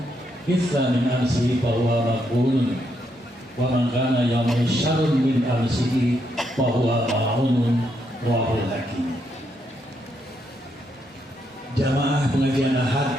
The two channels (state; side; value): normal; both; correlation 0.78